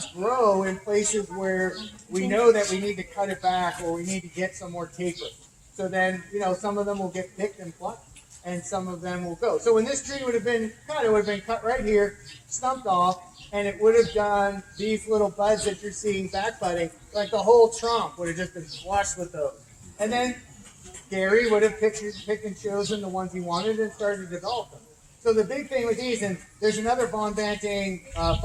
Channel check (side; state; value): both; identical; correlation 1.00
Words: grow in places where we know that we need to cut it back or we need to get some more taper. So then, some of them will get picked and plucked, and some of them will go. So when this tree would have been cut, it would have been cut right here, stumped off, and it would have done these little buds that you're seeing back budding, like the whole trunk would have just been flushed with those. And then Gary would have picked and chosen the ones he wanted and started to develop them. So the big thing with these, and there's another Von Banting